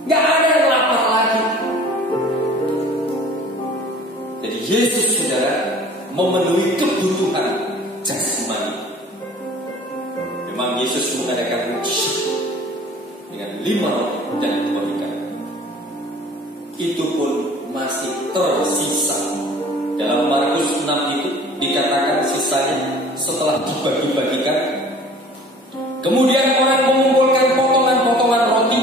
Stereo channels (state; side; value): normal; both; correlation 0.48